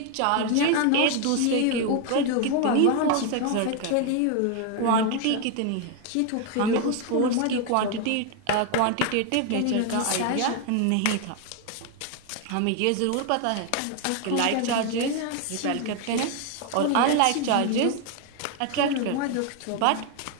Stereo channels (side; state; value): both; different; correlation 0.01